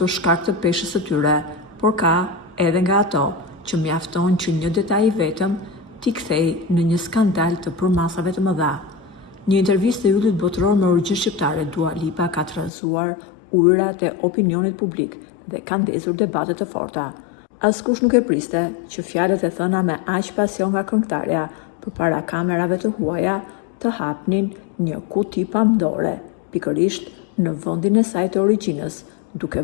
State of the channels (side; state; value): right; drops out; at 12.7 s